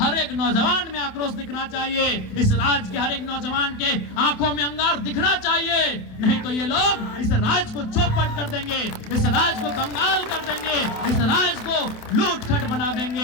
एक नौजवान में आक्रोश दिखना चाहिए, इस राज्य के हर एक नौजवान के आंखों में अंगार दिखना चाहिए। नहीं तो ये लोग इस राज्य को चौपट कर देंगे, इस राज्य को कंगाल कर देंगे, इस राज्य को लूट खट बना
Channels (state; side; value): late; right; 27 ms